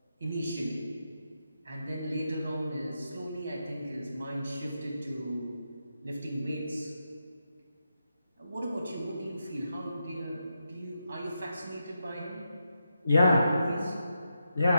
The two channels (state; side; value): inverted; both; correlation -0.86